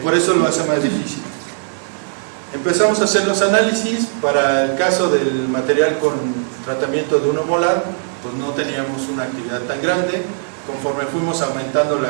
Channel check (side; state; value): left; silent; digital silence